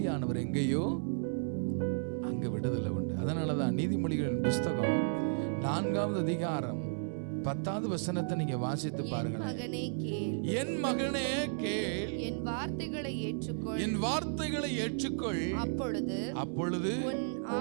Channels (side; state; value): left; silent; 55 dB below the other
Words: எங்கேயோ அங்க விடுதலை உண்டு. அதனாலதான் நீதிமொழிகளின் புஸ்தகம் 4வது அதிகாரம் 10வது வசனத்தை நீங்க வாசித்து பாருங்க. என் மகனே கேள், என் வார்த்தைகளை ஏற்றுக்கொள், என் வார்த்தைகளை ஏற்றுக்கொள். அப்பொழுது உன்